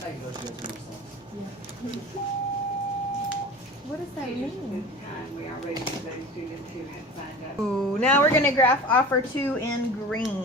how you No. know she got too much sauce. What does that mean? We are ready for those students who have signed up. Ooh, now we're going to graph offer 2 in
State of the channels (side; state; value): both; normal; correlation 0.37